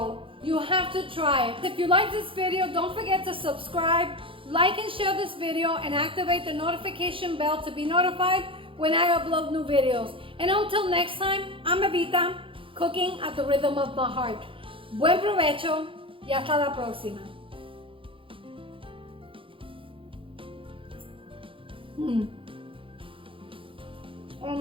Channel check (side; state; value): left; late; 0.25 ms